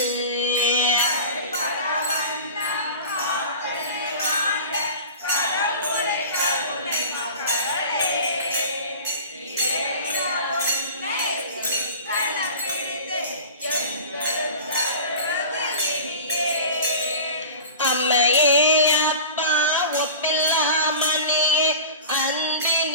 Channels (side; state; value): both; inverted; correlation -0.35